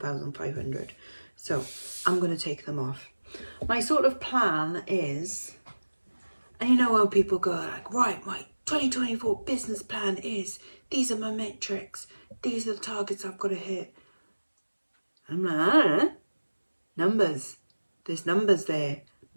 So I'm going to take them off. My sort of plan is, and you know how people go like, right, my 2024 business plan is, these are my metrics, these are the targets I've got to hit. I'm like, I don't know. Numbers. There's numbers there.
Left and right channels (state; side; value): inverted; both; correlation -1.00